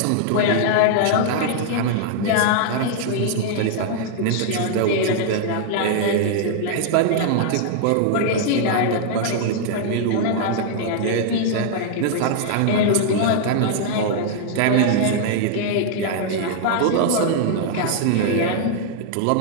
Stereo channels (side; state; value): both; different; correlation -0.01